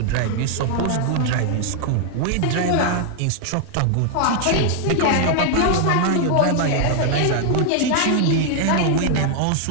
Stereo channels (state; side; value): different; both; correlation 0.00